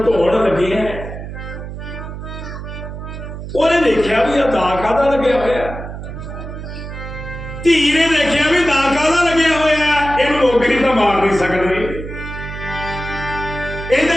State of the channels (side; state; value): right; noise; hum, 9 dB below the sound